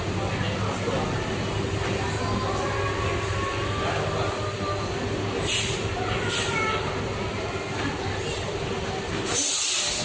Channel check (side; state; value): both; identical; correlation 1.00